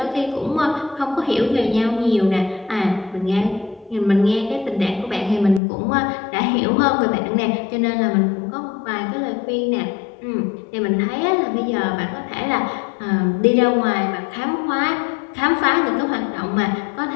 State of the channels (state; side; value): drops out; right; at 5.6 s